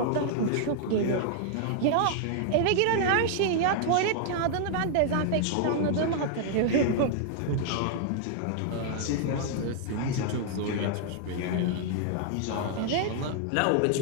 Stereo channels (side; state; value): both; different; correlation -0.01